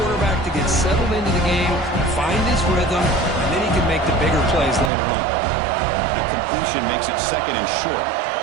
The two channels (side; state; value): left; drops out; at 4.9 s